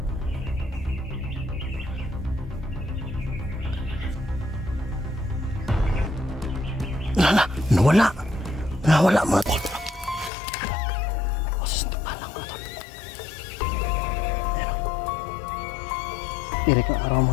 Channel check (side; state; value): right; drops out; at 10.3 s